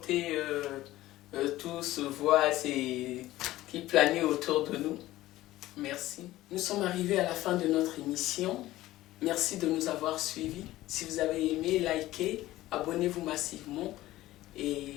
tout ce voile qui planait autour de nous. Merci. Nous sommes arrivés à la fin de notre émission. Merci de nous avoir suivis. Si vous avez aimé, likez, abonnez-vous massivement. Et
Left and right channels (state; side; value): quieter; right; 16.1 dB